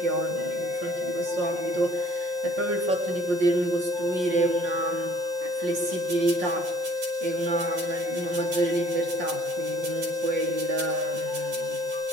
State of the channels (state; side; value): late; left; 5.6 ms